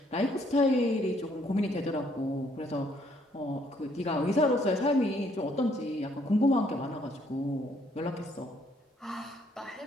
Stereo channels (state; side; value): normal; both; correlation 0.67